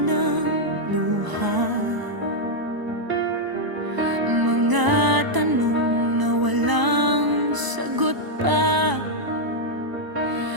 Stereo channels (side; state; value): left; late; 1.0 ms